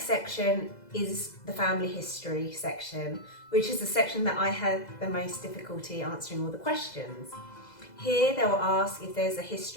section is the family history section, which is the section that I had the most difficulty answering all the questions. Here they will ask if there's a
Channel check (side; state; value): right; late; 2.0 ms